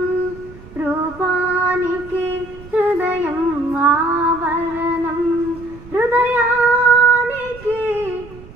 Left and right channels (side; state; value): right; noise; rumble, 19 dB below the sound